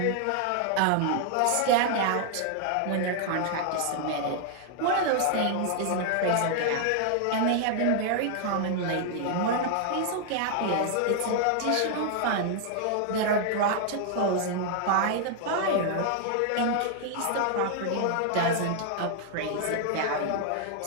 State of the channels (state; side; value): different; both; correlation 0.00